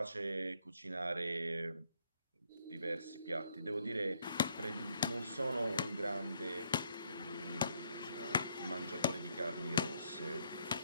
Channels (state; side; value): inverted; both; correlation -0.71